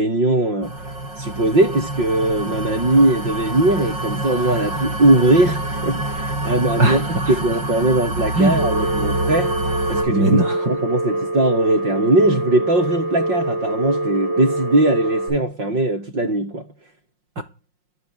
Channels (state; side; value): late; left; 5.6 ms